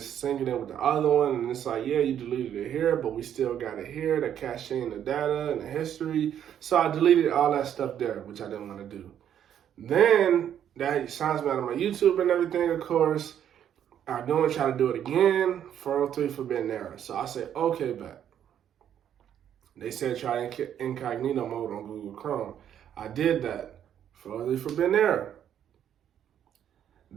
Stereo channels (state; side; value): quieter; left; 9.7 dB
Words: syncing it with the other one. And it's like, yeah, you deleted it here, but we still got it here, the caching, the data, and the history. So I deleted all that stuff there, which I didn't want to do. Then that signs me out of my YouTube and everything, of course. I don't try to do it again, 403 forbidden error. So I said, okay, bet. They said try incognito mode on Google Chrome. I did that, 403 forbidden error.